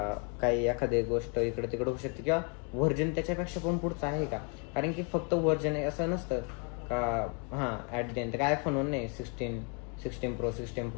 काही एखादी गोष्ट इकडे तिकडे होऊ शकते, किंवा व्हर्जन त्याच्यापेक्षा पण पुढचं आहे का. कारण की फक्त व्हर्जन आहे असं नसतं का. ॲट द एंड काय आयफोनवर नाही, 16 Pro 16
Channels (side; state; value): right; quieter; 37.2 dB